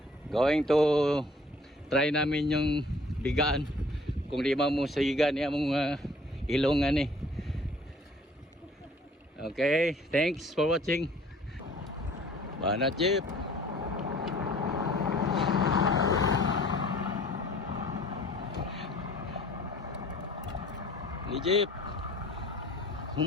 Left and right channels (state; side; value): normal; both; correlation 0.53